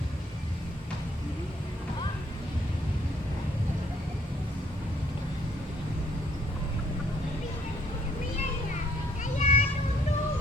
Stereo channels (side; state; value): both; normal; correlation 0.66